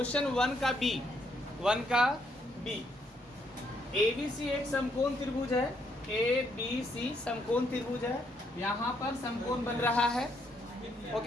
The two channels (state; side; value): normal; both; correlation 0.74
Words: one का B. ABC एक समकोण त्रिभुज है, ABC समकोण त्रिभुज है। यहाँ पर समकोण बन रहा है,